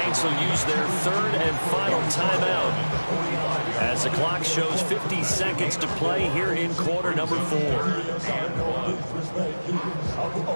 will use their third and final timeout as the clock shows 50 seconds to play here in quarter number 4.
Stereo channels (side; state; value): both; inverted; correlation -1.00